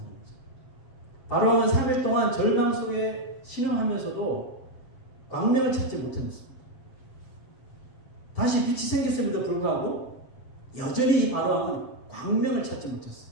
바로왕은 3일 동안 절망 속에 신음하면서도 광명을 찾지 못했습니다. 다시 빛이 생겼음에도 불구하고 여전히 이 바로왕은 광명을 찾지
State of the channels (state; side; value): late; right; 7.5 ms